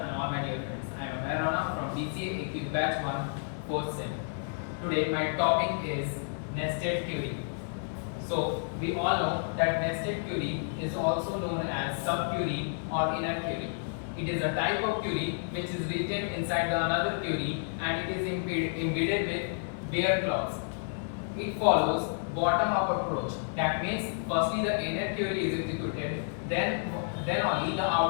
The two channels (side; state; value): right; silent; digital silence